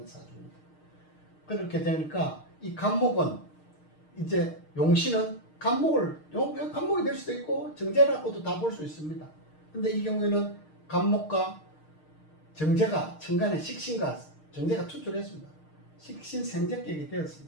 사주입니다. 그렇게 되니까 이 간목은 이제 용신은 간목이 될 수도 있고 정제라고도 다 볼 수 있습니다. 근데 이 경우에는 간목과 정제가 천간에 식신과 정제가 투출했습니다. 식신생제격이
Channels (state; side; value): late; right; 6.5 ms